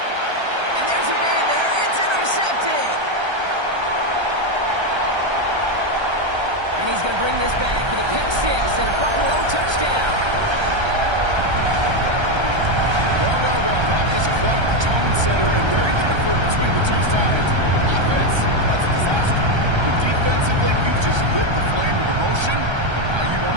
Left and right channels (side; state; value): left; late; 1.3 ms